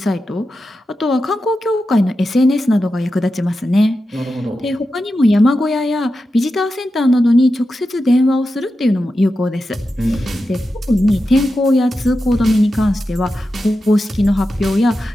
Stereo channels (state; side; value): normal; both; correlation 0.90